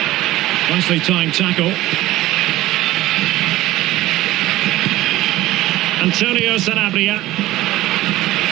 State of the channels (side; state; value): left; quieter; 16.5 dB